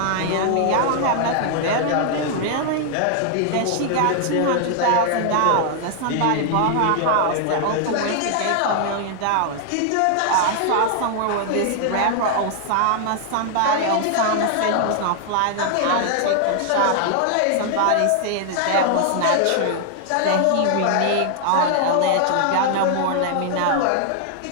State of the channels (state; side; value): different; both; correlation 0.00